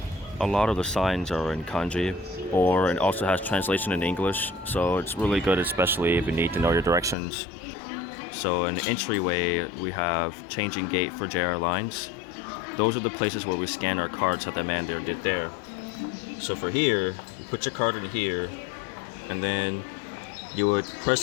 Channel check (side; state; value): right; drops out; at 7.2 s